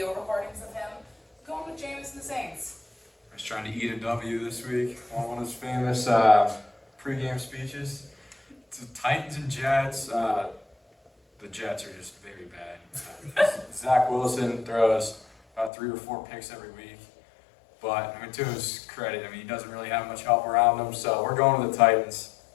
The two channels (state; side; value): drops out; right; at 15.7 s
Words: recordings of him. Going with Jameis and the Saints. He's trying to eat a W this week on one of his famous pregame speeches. It's the Titans and Jets. The Jets are just very bad. Zach Wilson throws about 3 or 4 picks every week. But, I mean, to his credit, I mean, he doesn't really have much help around him, so we're going with the Titans.